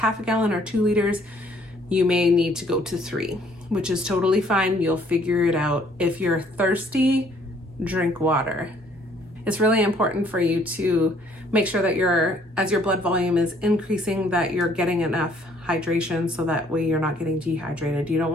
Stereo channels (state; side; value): normal; both; correlation 0.62